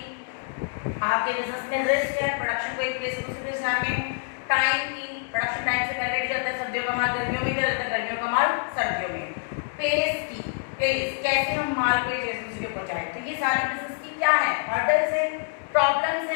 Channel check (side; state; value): right; silent; 61 dB below the other